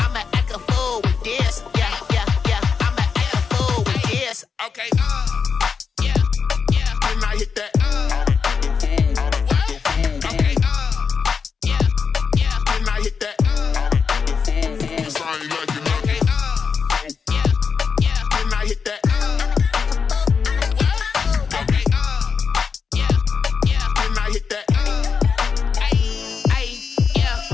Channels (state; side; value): quieter; right; 5.8 dB